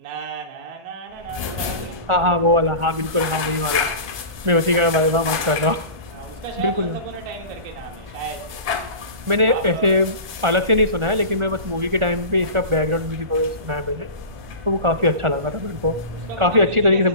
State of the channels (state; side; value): late; left; 1.4 ms